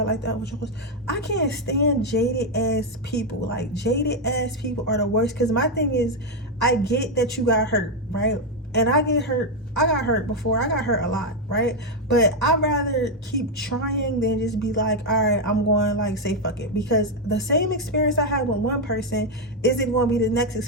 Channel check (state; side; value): normal; both; correlation 0.03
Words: like that with yours? I can't stand jaded ass people. Like, jaded ass people are the worst. Because my thing is, I get that you got hurt, right? And I get hurt. I got hurt before. I got hurt a lot, right? But I'd rather keep trying than just be like, all right, I'm going, like, say fuck it. Because the same experience I had with one person isn't going to be the next